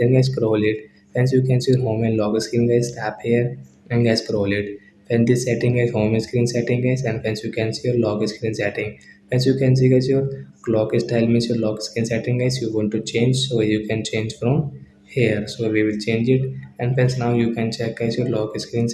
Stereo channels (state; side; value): identical; both; correlation 1.00